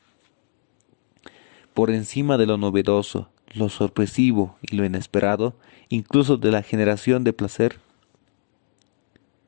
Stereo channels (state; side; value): silent; right; 63 dB below the other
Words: Por encima de lo novedoso, lo sorpresivo y lo inesperado, incluso de la generación de placer,